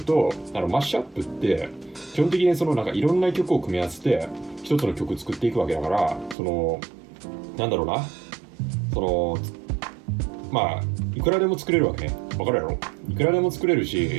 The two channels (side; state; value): left; drops out; at 6.4 s